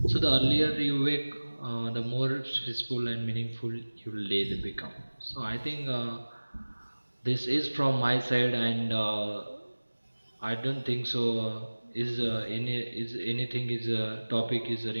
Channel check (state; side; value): inverted; both; correlation -1.00